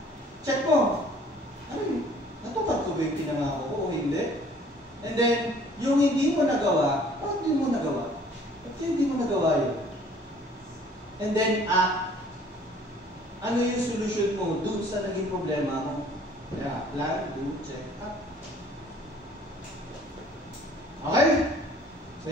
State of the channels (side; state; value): both; normal; correlation 0.55